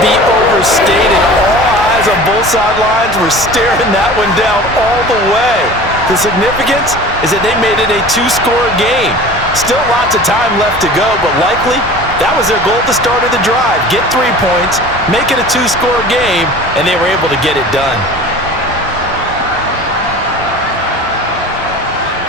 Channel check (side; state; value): both; normal; correlation 0.40